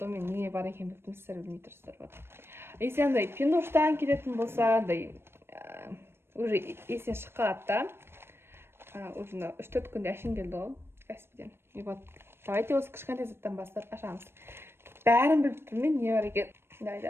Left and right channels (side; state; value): left; late; 0.12 ms